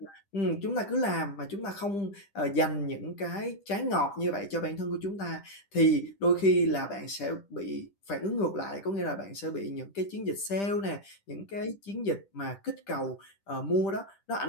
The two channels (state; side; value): late; right; 10 ms